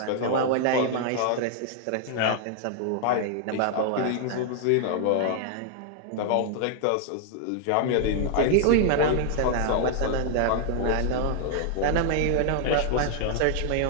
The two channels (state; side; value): different; both; correlation 0.00